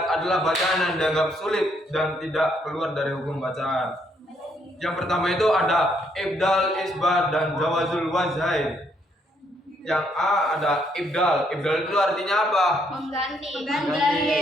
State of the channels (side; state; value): both; normal; correlation 0.71